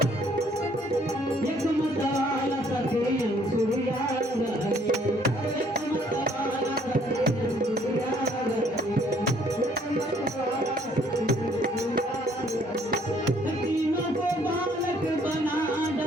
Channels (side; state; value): both; normal; correlation 0.62